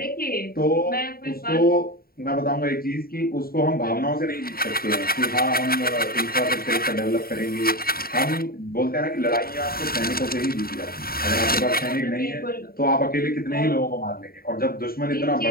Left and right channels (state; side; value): late; right; 0.43 ms